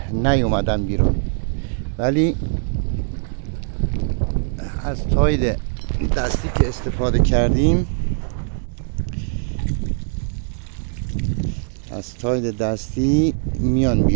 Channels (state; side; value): silent; left; 60 dB below the other